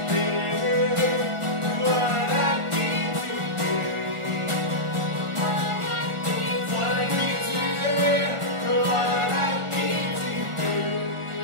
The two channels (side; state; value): left; late; 1.4 ms